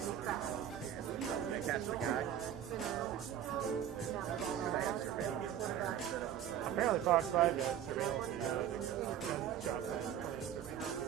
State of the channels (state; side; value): quieter; left; 10.1 dB